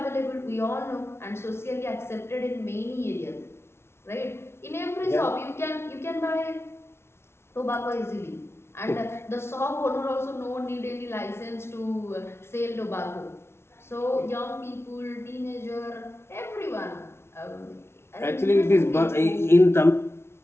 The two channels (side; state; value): right; late; 0.12 ms